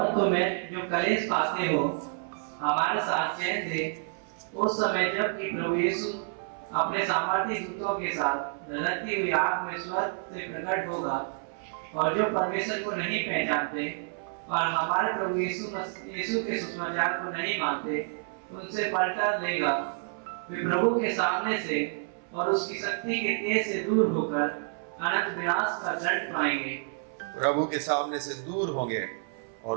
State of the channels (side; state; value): left; silent; 58 dB below the other